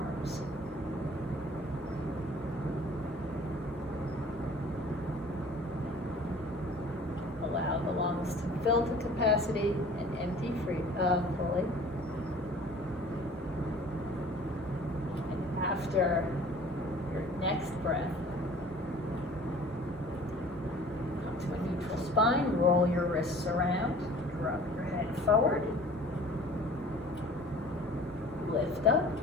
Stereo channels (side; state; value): both; normal; correlation 0.48